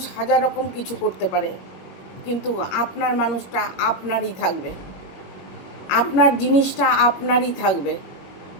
হাজার রকম কিছু করতে পারে, কিন্তু আপনার মানুষটা আপনারই থাকবে, আপনার জিনিসটা আপনারই থাকবে।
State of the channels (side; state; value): right; late; 21 ms